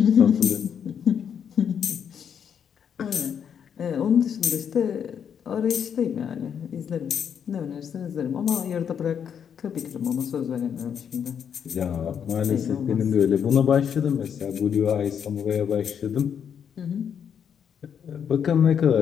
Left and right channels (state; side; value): quieter; right; 7.9 dB